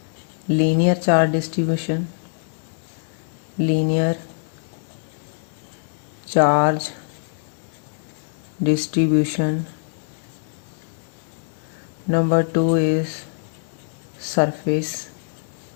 linear charge distribution. Linear charge distribution. Number two is surface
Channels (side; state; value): right; silent; digital silence